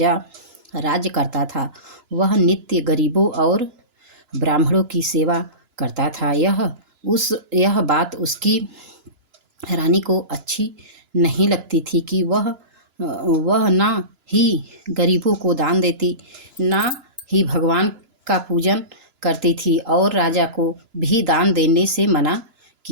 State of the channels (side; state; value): left; late; 2.9 ms